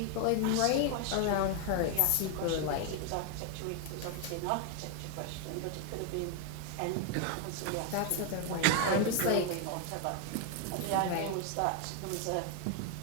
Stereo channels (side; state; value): both; different; correlation 0.01